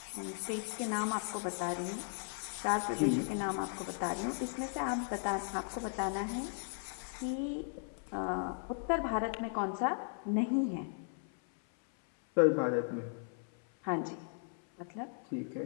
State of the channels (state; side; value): silent; right; 53 dB below the other